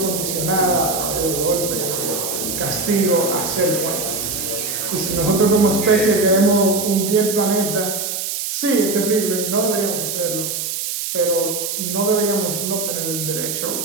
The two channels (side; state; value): right; noise; hiss, 3 dB below the sound